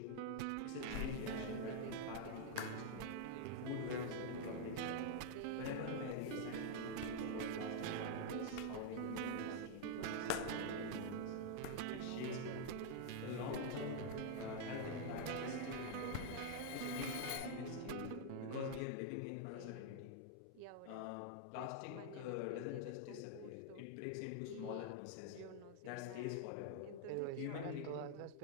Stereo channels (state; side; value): different; both; correlation 0.00